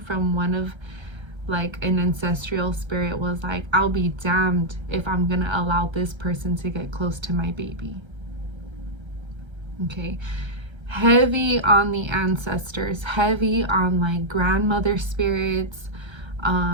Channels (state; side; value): late; left; 1.3 ms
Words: one of like an ancestral spirit was like, I'll be damned if I'm gonna allow this person to get close to my baby. Okay, heavy on the ancestors, heavy on like grandmother spirits,